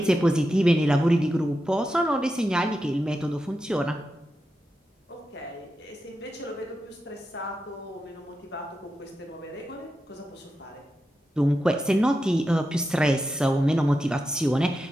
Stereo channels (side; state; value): both; normal; correlation 0.89